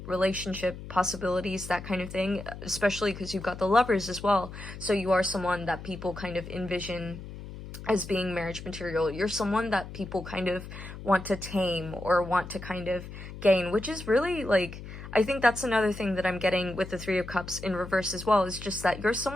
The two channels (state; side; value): noise; left; hum, 12 dB below the sound